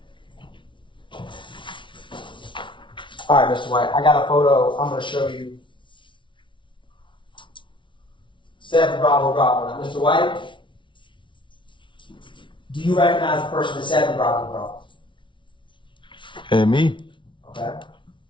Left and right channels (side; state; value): right; late; 0.24 ms